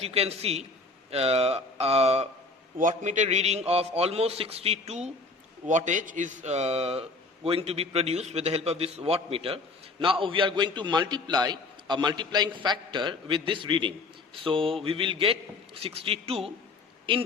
you can see, a wattmeter reading of almost 62 wattage is going to be produced with the help of this wattmeter. Now we are going to multiply a multiplying factor with this reading. So we will get 62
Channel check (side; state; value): right; quieter; 3.4 dB